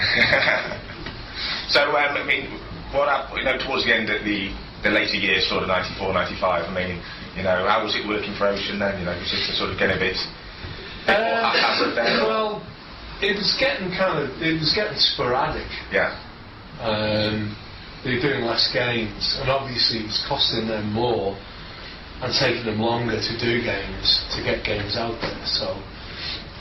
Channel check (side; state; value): both; identical; correlation 1.00